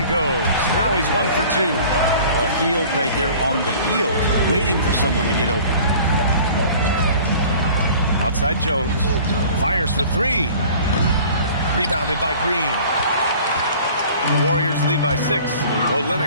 goes. Now he's 1 for 2. Well, Hield right there on the yield, waiting for someone to get open. Outside Jones. Fires for 3. Rebounded by Green. The Warriors lead by 6.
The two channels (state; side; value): inverted; both; correlation -0.47